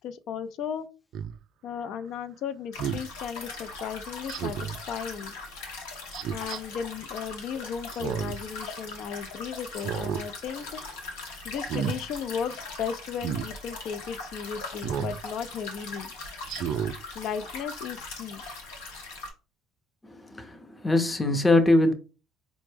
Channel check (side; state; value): both; normal; correlation 0.66